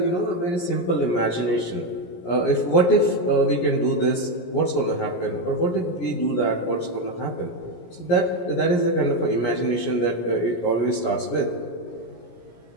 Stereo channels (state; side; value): late; right; 17 ms